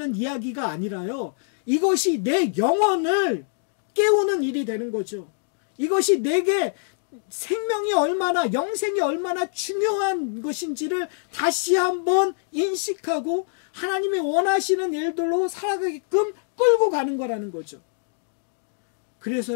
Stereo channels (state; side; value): silent; right; digital silence